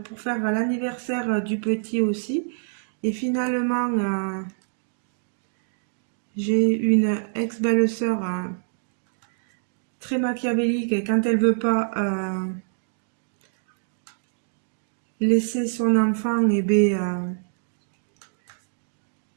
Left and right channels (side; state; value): left; silent; digital silence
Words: pour faire l'anniversaire du petit aussi, et finalement j'ai une ex-belle-sœur très machiavélique et quand elle veut pas laisser son enfant